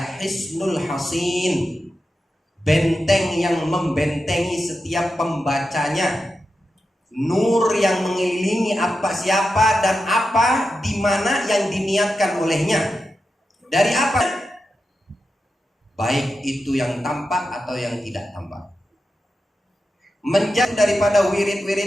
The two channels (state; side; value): normal; both; correlation 0.90